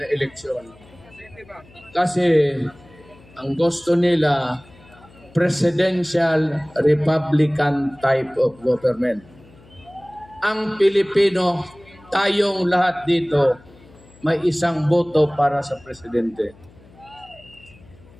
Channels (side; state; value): left; noise; hum, 25 dB below the sound